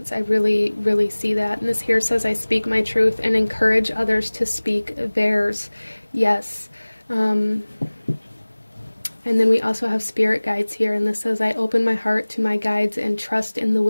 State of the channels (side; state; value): both; inverted; correlation -1.00